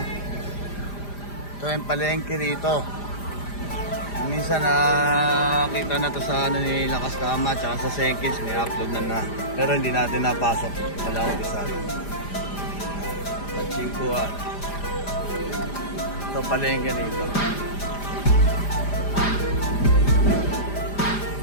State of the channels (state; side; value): late; right; 5.0 ms